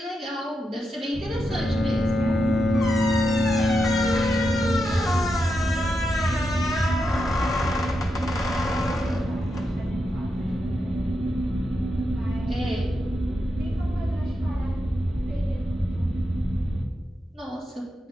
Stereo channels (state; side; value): normal; both; correlation 0.86